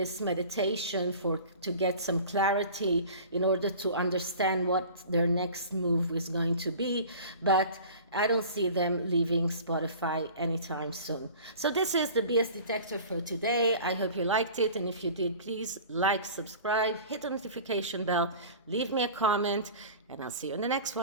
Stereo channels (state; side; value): inverted; both; correlation -0.41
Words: meditation to get some clarity in order to understand what their next move is going to be. But I don't see them leaving Spotify anytime soon. So this is the BS Detector for today. I hope you liked it. And if you did, please like, subscribe, hit the notification bell, leave me a comment, and I'll see you in the next